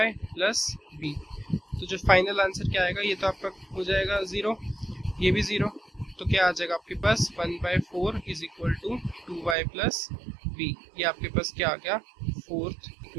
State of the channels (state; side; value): drops out; left; at 9.6 s